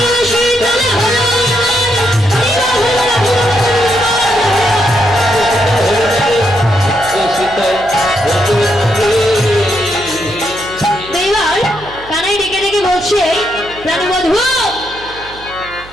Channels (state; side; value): noise; right; hum, 20 dB below the sound